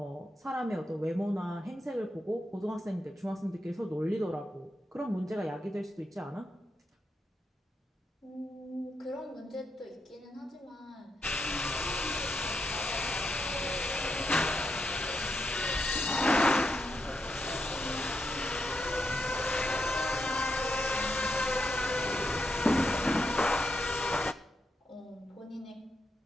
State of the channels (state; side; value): normal; both; correlation 0.83